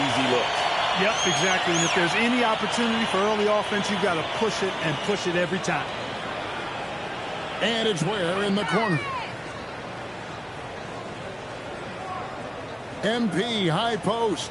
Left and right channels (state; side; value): identical; both; correlation 1.00